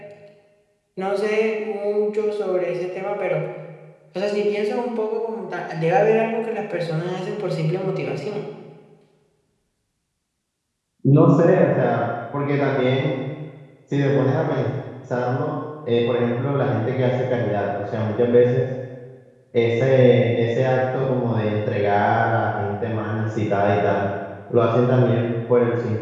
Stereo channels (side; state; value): both; identical; correlation 1.00